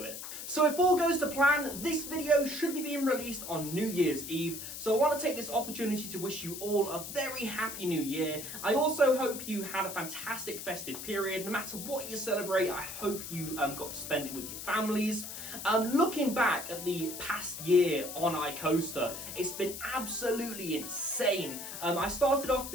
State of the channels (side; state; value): left; noise; hiss, 8 dB below the sound